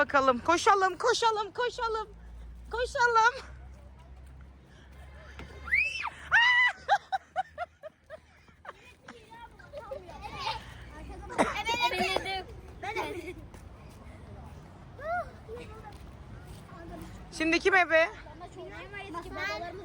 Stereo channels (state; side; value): identical; both; correlation 1.00